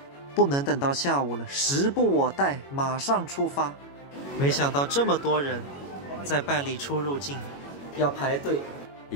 不能等到下午了，时不我待，马上出发。没想到这么多人在办理出入境，要排队。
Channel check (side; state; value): right; late; 21 ms